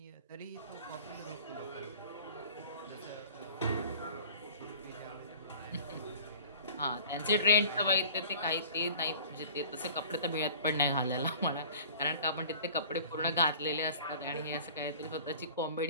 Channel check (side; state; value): both; inverted; correlation -0.44